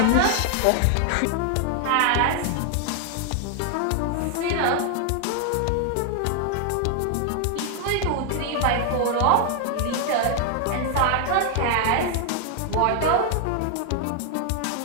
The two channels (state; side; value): different; both; correlation 0.00